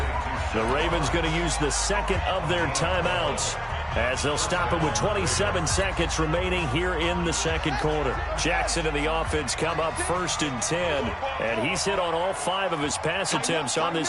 The Ravens going to use the second of their timeouts, as they'll stop it with 27 seconds remaining here in the second quarter. Jackson and the offense come up 1st and 10, and he's hit on all 5 of his pass attempts on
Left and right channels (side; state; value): both; identical; correlation 1.00